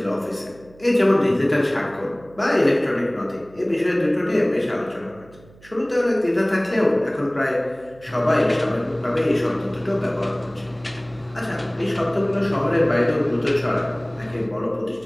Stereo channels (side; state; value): right; noise; hum, 24 dB below the sound